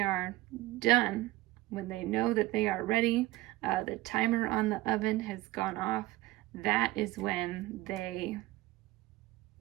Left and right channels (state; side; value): quieter; left; 18.3 dB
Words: are done, when they know that they are ready, the timer on the oven has gone off, that is when they